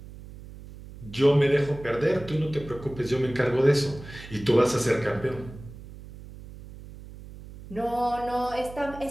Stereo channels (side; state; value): right; noise; hum, 16 dB below the sound